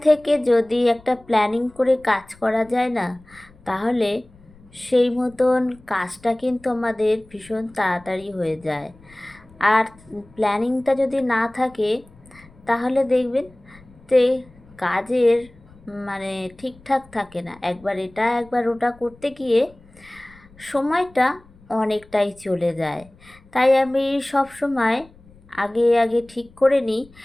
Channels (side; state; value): left; noise; rumble, 26 dB below the sound